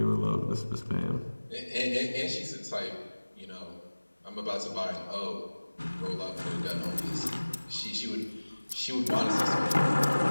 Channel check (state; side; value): inverted; both; correlation -1.00